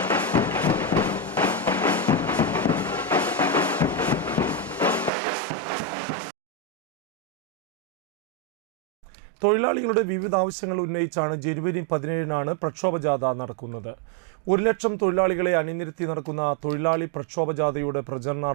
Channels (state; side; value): drops out; left; at 5.1 s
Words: തൊഴിലാളികളുടെ വിവിധ ആവശ്യങ്ങൾ ഉന്നയിച്ചാണ് ജനുവരി 17-നാണ് പ്രക്ഷോഭജാഥ നടക്കുന്നത്. 1 ലക്ഷം തൊഴിലാളികളെ അണിനിരത്തി നടക്കുന്ന തൊഴിലാളി പ്രക്ഷോഭജാഥയുടെ